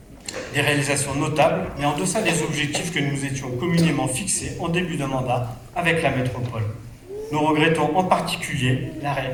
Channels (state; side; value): identical; both; correlation 1.00